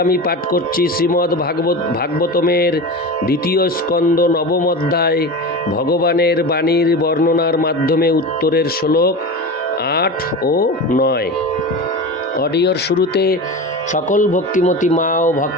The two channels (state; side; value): normal; both; correlation 0.27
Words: শ্রীমদ্ ভাগবতমের দ্বিতীয় স্কন্দ নবম অধ্যায় ভগবানের বাণীর বর্ণনার মাধ্যমে উত্তরের শ্লোক 8 ও 9। অডিওর শুরুতে সকল ভক্তিমতী মা ও